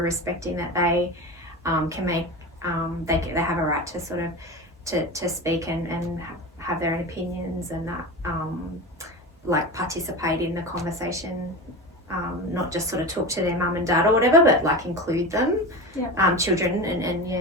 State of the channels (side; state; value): both; normal; correlation 0.26